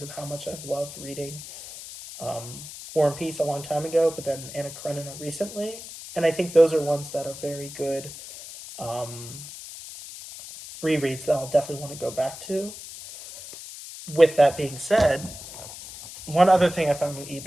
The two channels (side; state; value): left; noise; hiss, 13 dB below the sound